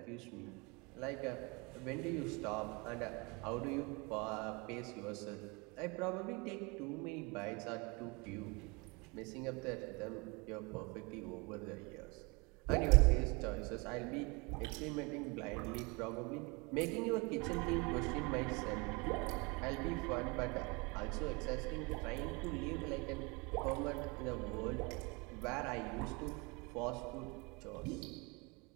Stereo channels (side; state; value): left; quieter; 28.4 dB